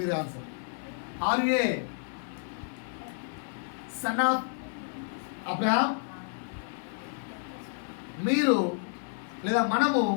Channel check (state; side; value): silent; right; 57 dB below the other